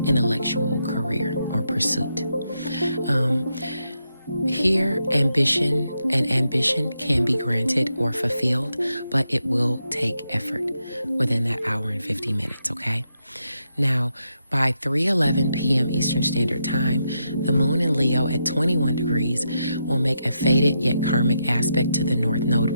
intellectual career or pursuit. Here, ambition can be granted or fulfilled, but it will take effort within that hour and 50 minutes, okay? Now, by 3:11 p.m. Eastern Standard Time, the moon in Leo at 21 degrees will make a fated yet karmic aspect to the North Node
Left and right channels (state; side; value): inverted; both; correlation -0.83